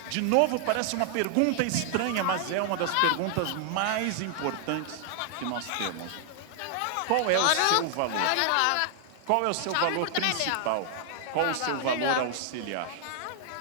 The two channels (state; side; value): different; both; correlation 0.00